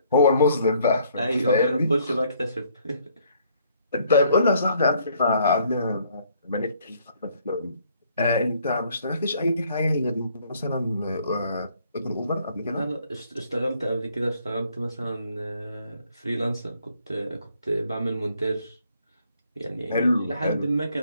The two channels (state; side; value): inverted; both; correlation -0.65